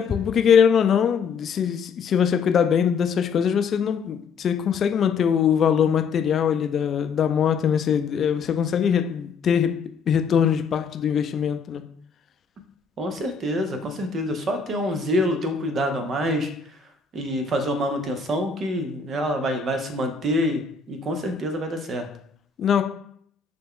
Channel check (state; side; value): quieter; right; 5.6 dB